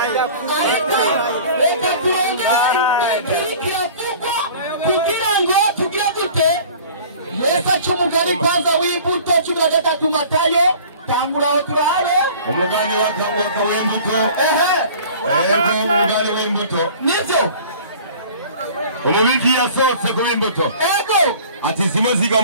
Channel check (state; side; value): inverted; both; correlation -0.45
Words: reka turongere kiravugwa kugira ngo tugire gute Yesu aca umugani kwanza w'imbuto 13 Matayo tangura aho turabe umugani watambuka w'imbuto umugani w'imbuto nivyo umubiki yasohotse ku b'imbuto ego ati zimwe ziga